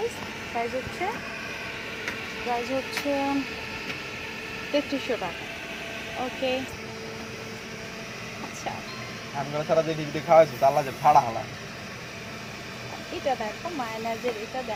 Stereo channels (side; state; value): both; identical; correlation 1.00